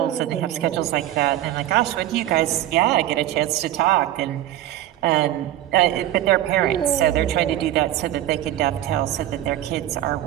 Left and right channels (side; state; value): left; quieter; 13.4 dB